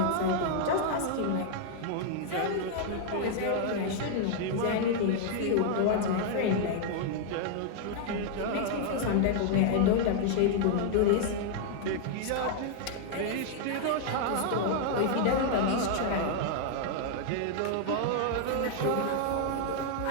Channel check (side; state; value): both; different; correlation 0.00